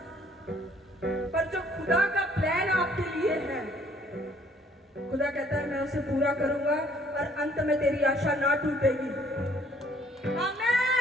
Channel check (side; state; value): both; normal; correlation 0.61